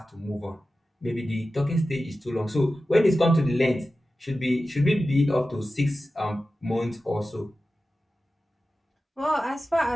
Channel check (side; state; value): both; normal; correlation 0.94